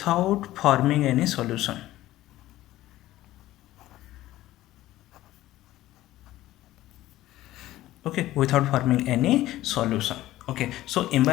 forming any solution. Okay, without forming any solution. Okay, so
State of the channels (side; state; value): right; quieter; 15.4 dB